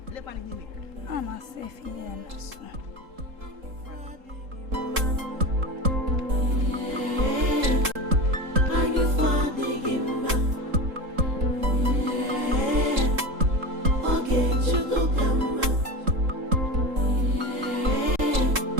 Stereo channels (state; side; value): late; left; 3.8 ms